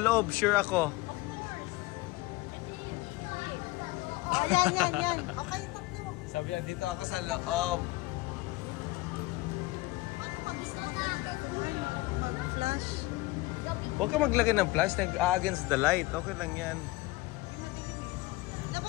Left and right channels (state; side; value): quieter; right; 20.8 dB